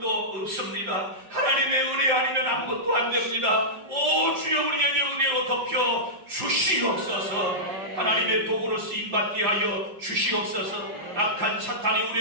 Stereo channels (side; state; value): left; late; 5.3 ms